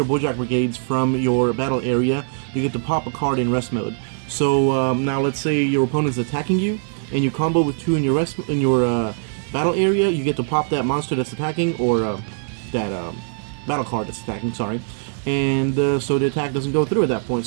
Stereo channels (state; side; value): silent; left; 65 dB below the other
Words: Boujack Brigades from your battle area, you get to pop a card in rest mode. So now let's say your opponent's attacking you, and you combo with two in your battle area, you get to pop that monster that's attacking, or that battle card that's attacking, sorry. And so the attack doesn't go through at that point.